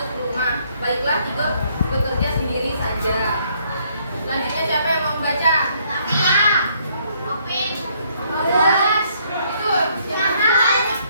rumah. Baiklah, Tigor bekerja sendiri saja. Selanjutnya siapa yang mau membaca? Itu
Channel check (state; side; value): inverted; both; correlation -0.68